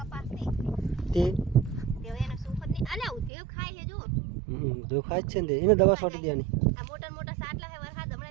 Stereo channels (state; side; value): drops out; left; at 3.3 s